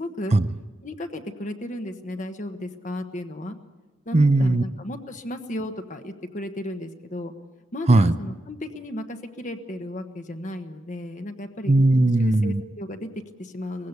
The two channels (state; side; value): normal; both; correlation 0.87